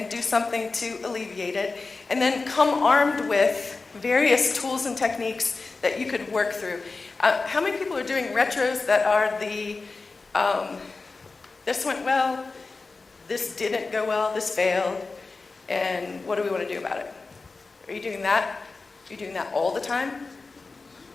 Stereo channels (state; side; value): quieter; right; 3.9 dB